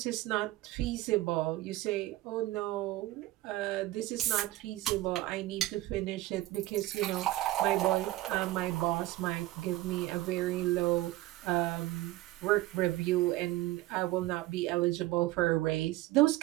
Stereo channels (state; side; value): quieter; left; 17.3 dB